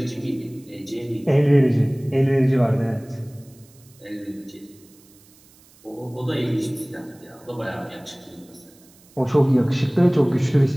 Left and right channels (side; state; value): right; noise; hiss, 28 dB below the sound